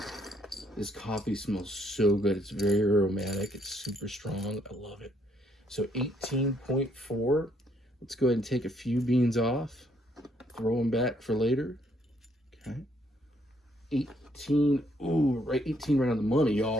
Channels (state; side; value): normal; both; correlation 0.70